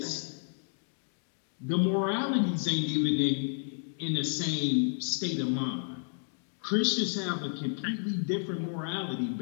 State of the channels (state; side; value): silent; right; digital silence